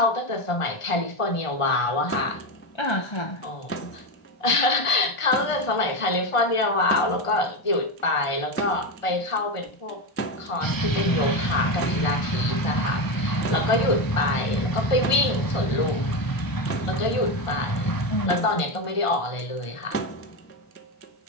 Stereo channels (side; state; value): right; late; 1.5 ms